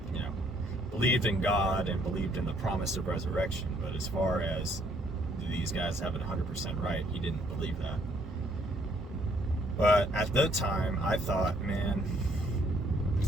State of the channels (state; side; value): normal; both; correlation 0.66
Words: Believed in God and believed in the promise of resurrection, but as far as these guys have it 100% right, he didn't believe that. But at the time, I thought, man,